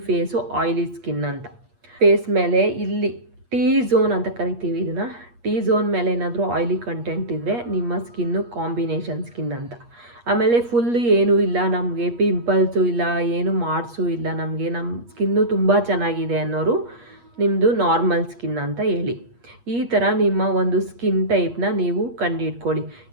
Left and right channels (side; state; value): left; late; 8.4 ms